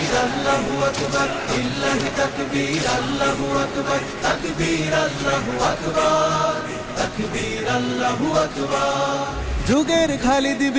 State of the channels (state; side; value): identical; both; correlation 1.00